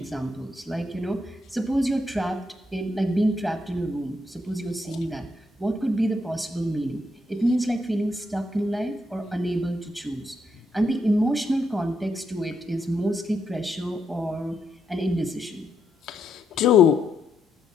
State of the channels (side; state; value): both; normal; correlation 0.79